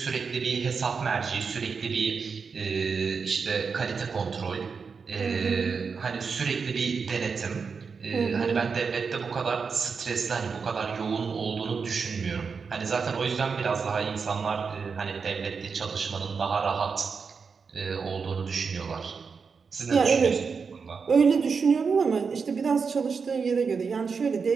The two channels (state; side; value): quieter; left; 5.4 dB